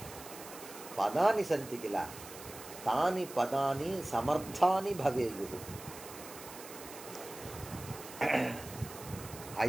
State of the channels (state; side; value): noise; right; hiss, 14 dB below the sound